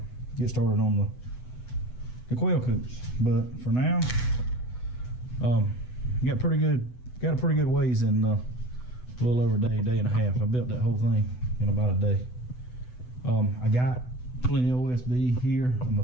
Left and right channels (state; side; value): late; right; 8.0 ms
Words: get started on the quail coops. But for now, got a pretty good ways in a little over a day and a half. I built that whole thing in about a day. I got plenty of OSB here. I'm gonna